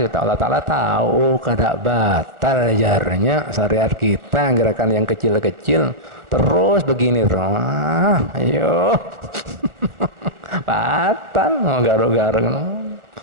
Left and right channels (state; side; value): late; left; 1.4 ms